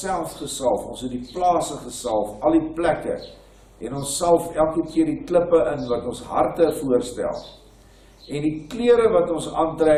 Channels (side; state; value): both; identical; correlation 1.00